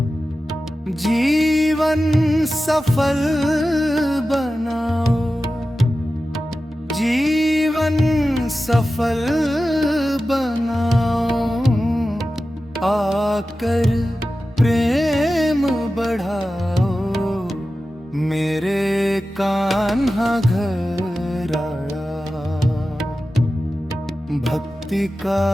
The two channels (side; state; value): both; normal; correlation 0.94